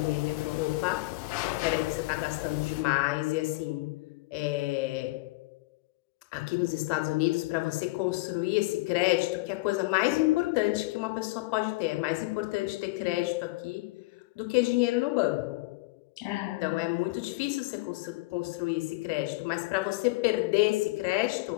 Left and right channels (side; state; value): right; quieter; 21.8 dB